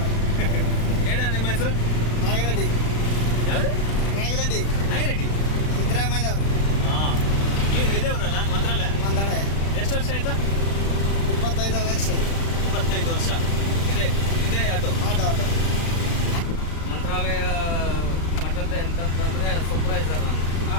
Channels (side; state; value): right; late; 35 ms